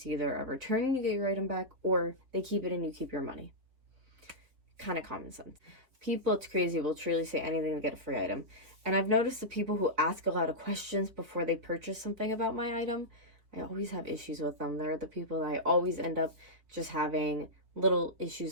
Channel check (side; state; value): left; late; 3.7 ms